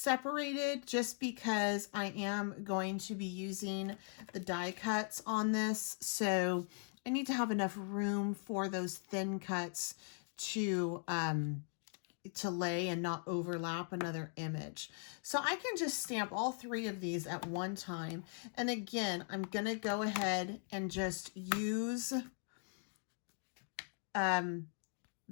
just because I am going to be using the die cuts on this. So I need to have enough room for those thin cuts to lay and not overlap another image. So I can just stamp all 3 of these at one time. And again, I'm going to go ahead and just use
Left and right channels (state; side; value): silent; right; 51 dB below the other